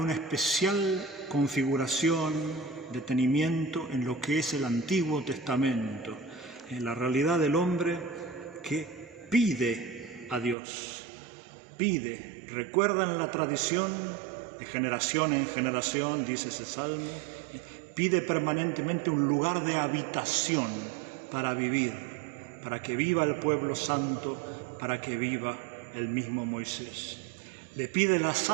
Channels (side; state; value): left; drops out; at 10.6 s